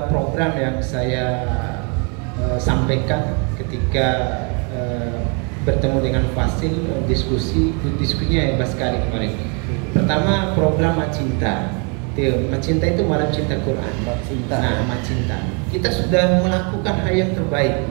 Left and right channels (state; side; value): quieter; left; 35.4 dB